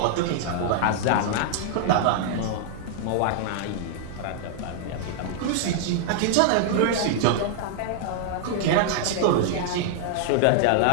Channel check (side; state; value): both; different; correlation -0.01